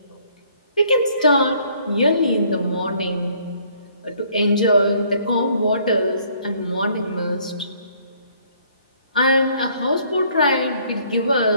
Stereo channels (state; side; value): inverted; both; correlation -0.62